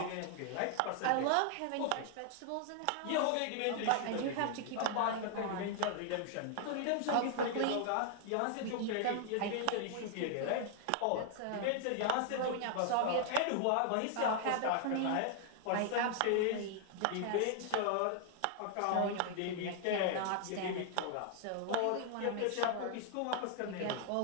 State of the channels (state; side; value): different; both; correlation 0.00